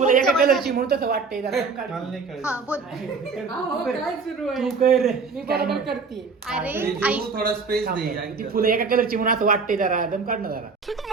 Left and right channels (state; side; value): quieter; left; 4.8 dB